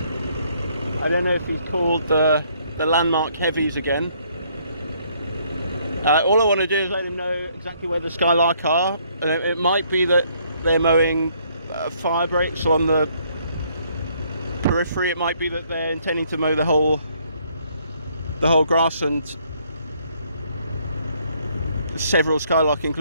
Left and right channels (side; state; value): both; inverted; correlation -0.67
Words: I don't know if he's called the landmark heavies again. All I want to do is let him know exactly where the Skylark are. And it might be that they're mowing fire breaks on the periphery. It might be that they're intending to mow the whole grassland, several Skylark